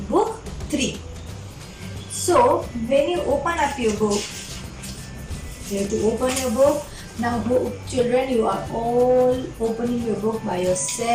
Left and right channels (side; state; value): both; identical; correlation 1.00